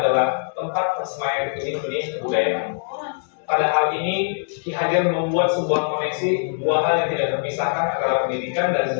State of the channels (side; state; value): right; silent; digital silence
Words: tempat persemaian benih-benih kebudayaan. Pada hal ini, Ki Hajar membuat sebuah koneksi dua hal yang tidak terpisahkan antara pendidikan dan